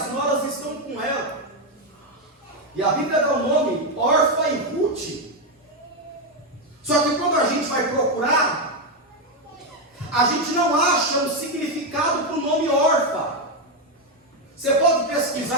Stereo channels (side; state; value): both; normal; correlation 0.06